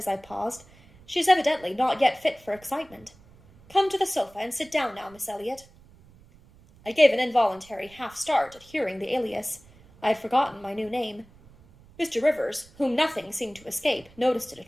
I paused. "She is evidently not yet fit for excitement. Come to the sofa and sit down now, Miss Elliot." I gave an involuntary half-start at hearing the alias. I had forgotten my new name. Mr. Rivers, whom nothing seemed to escape, noticed it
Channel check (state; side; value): noise; right; rumble, 26 dB below the sound